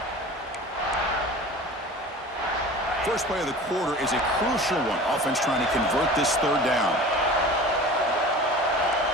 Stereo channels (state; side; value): normal; both; correlation 0.39